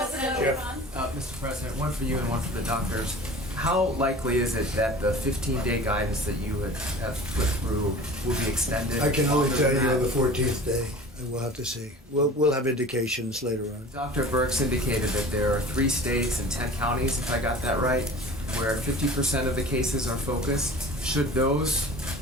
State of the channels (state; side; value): normal; both; correlation 0.40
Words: Mr. President, one for you and one for the doctors. How likely is it that the 15-day guidance that you have put through will be extended? I can only longer tell than you on that? the 14th day, and we'll have to see. We'll have indications later on. Dr. Birx indicated that there are 3 states and 10 counties, if I got that right, where 50% of the cases are focused. Should those